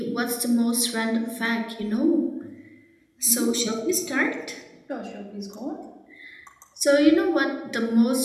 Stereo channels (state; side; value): identical; both; correlation 1.00